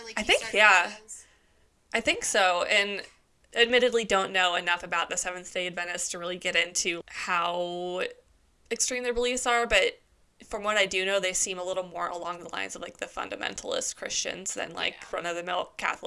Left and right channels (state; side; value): identical; both; correlation 1.00